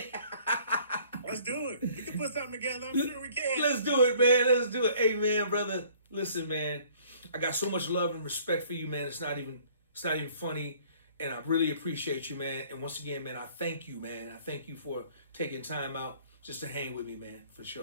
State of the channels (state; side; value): inverted; both; correlation -0.56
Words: Let's do it. We can put something together. I'm sure we can. Let's do it, man. Let's do it. Hey, man, brother. Listen, man. I got so much love and respect for you, man. It's not even funny. And I really appreciate you, man. And once again, man, I thank you, man. I thank you for taking time out just to hang with me, man, for